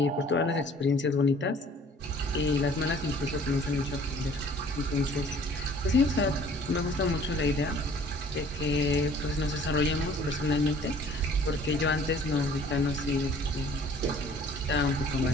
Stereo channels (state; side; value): normal; both; correlation 0.53